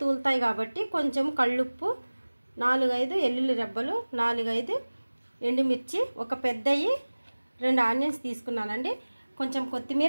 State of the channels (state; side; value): inverted; both; correlation -1.00